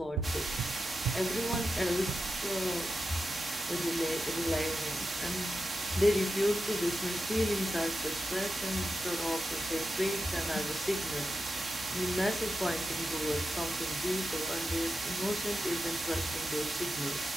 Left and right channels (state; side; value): normal; both; correlation 0.90